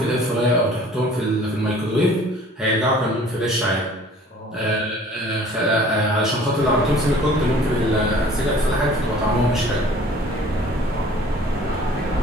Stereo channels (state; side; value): normal; both; correlation 0.50